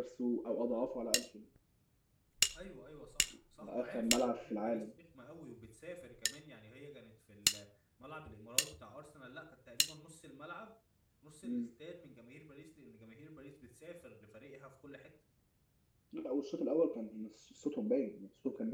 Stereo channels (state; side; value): identical; both; correlation 1.00